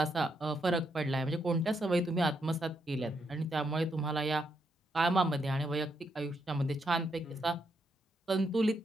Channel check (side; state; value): both; normal; correlation 0.79